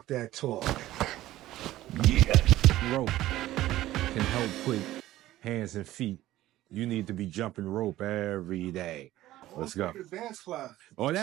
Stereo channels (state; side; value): quieter; left; 15.2 dB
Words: That Talk. Yeah. Rope can help put hands and feet. You need to be jumping rope every day. Let's go. Dance class. Oh,